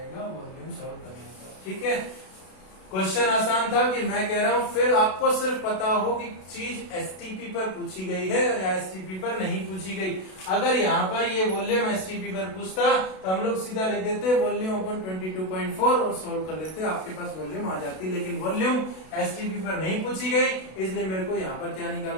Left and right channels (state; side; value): late; right; 32 ms